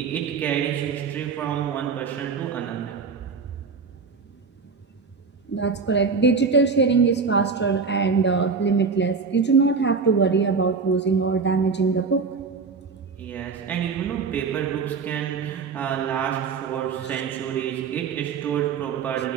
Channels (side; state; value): left; quieter; 5.2 dB